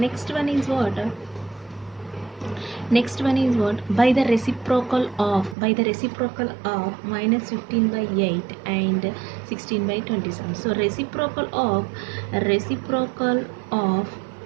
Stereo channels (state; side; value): drops out; left; at 5.6 s